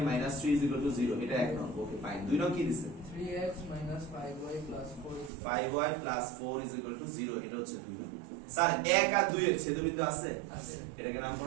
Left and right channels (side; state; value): left; drops out; at 5.3 s